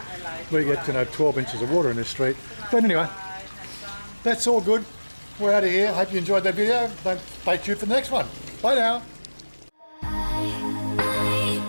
we get 12 inches of water in this street. But anyway, that's all good. We're out of here. Hope you enjoyed that video. Don't stay tuned for the next one. Bye now. I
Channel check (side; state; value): both; inverted; correlation -1.00